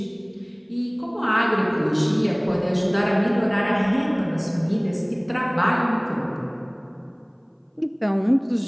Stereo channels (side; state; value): both; identical; correlation 1.00